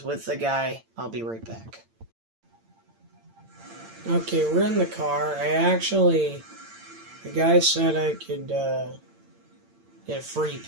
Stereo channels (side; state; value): left; late; 8.8 ms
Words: with the guy. I'll be right back. Okay, we're in the car. The guy said I could get a free